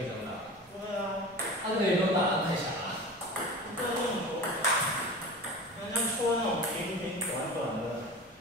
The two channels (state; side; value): normal; both; correlation 0.34